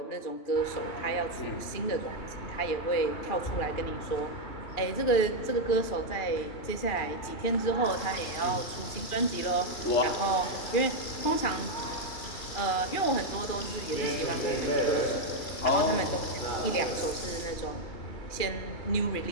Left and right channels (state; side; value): late; right; 2.4 ms